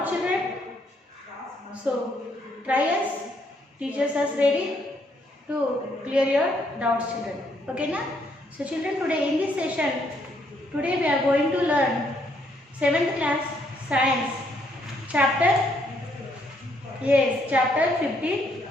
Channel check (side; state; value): both; normal; correlation 0.71